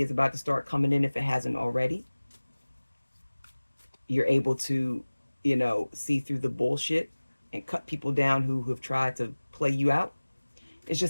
is about to start coming in if it hasn't already. You're able to, see through the bullshit and cut people down who have tried to play you out. It's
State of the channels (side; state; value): both; inverted; correlation -1.00